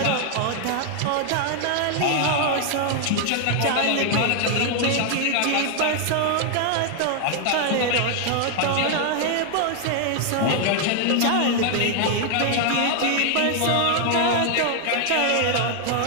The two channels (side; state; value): both; different; correlation 0.00